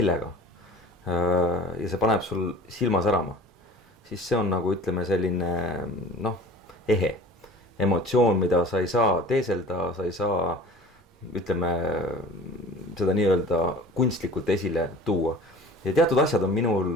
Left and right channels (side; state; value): both; normal; correlation 0.42